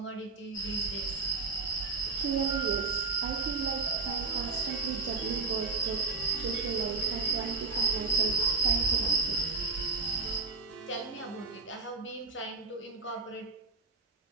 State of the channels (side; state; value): left; quieter; 4.1 dB